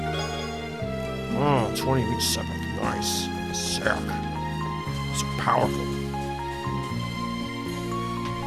Oh, 20 reach separate. Nice. Sick. So powerful.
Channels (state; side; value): identical; both; correlation 1.00